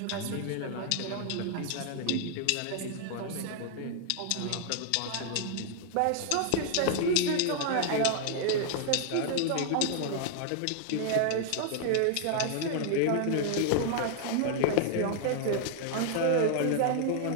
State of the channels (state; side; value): different; both; correlation 0.00